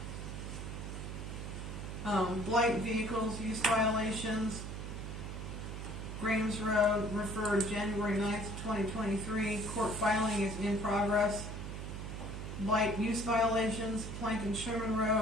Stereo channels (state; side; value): noise; right; hum, 7 dB below the sound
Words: Blight vehicles, use violations, Graves Road, referred January 9th, 2023. Court filing is in progress. Blight use violations, Plank and Sherman